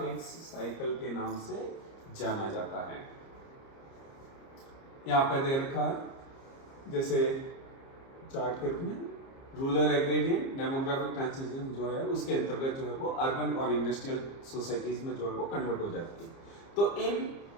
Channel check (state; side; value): late; right; 30 ms